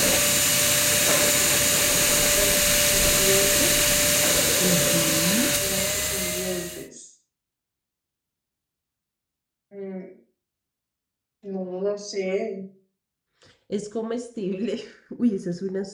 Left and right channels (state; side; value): identical; both; correlation 1.00